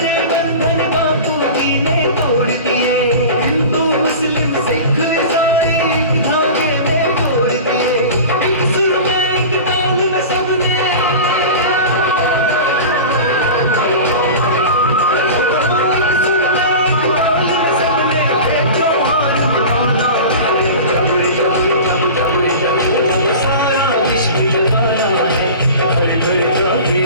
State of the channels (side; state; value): both; inverted; correlation -0.34